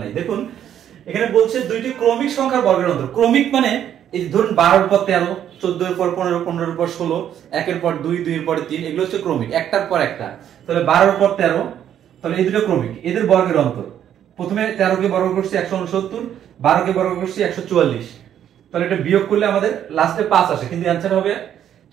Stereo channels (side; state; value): left; quieter; 10.1 dB